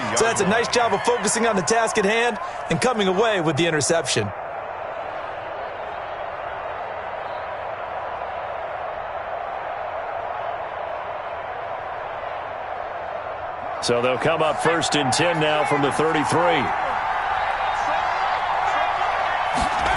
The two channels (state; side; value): identical; both; correlation 1.00